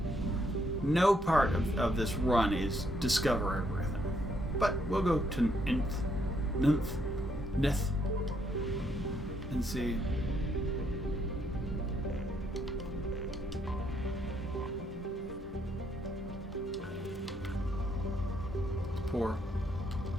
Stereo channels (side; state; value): both; normal; correlation 0.73